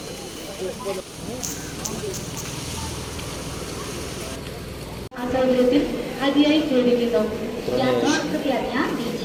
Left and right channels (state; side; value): identical; both; correlation 1.00